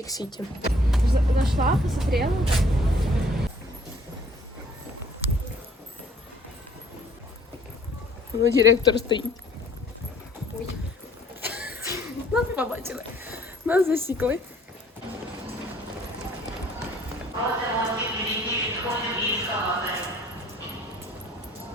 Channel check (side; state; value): both; normal; correlation 0.57